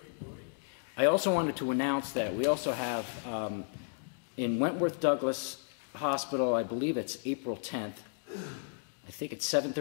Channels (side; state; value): right; silent; digital silence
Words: Roy. I also wanted to announce that we also have in Wentworth Douglas Hospital, I believe it's April 10th, I think it's